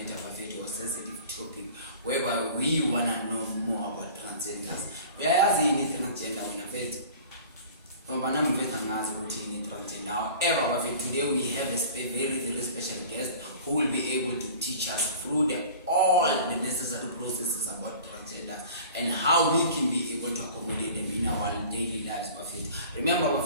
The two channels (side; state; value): both; inverted; correlation -0.43